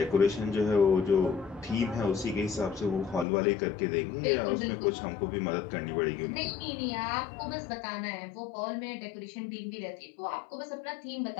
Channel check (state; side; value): drops out; right; at 3.2 s